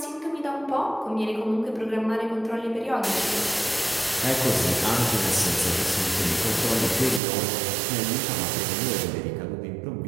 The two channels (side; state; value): left; drops out; at 7.2 s